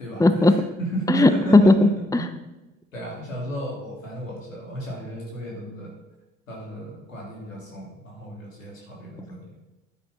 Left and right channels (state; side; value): normal; both; correlation 0.79